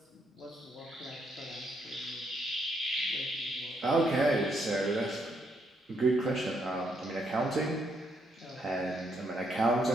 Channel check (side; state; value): both; normal; correlation 0.75